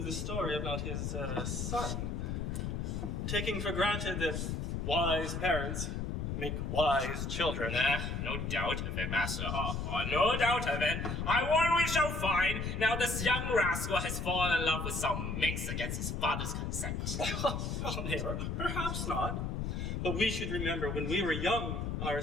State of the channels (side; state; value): left; noise; rumble, 2 dB below the sound